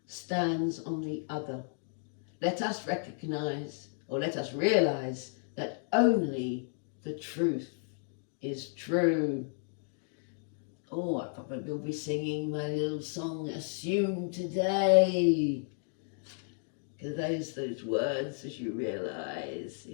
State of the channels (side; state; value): right; silent; 56 dB below the other